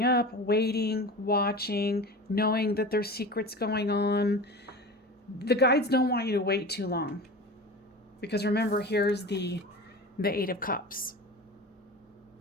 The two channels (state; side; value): normal; both; correlation 0.32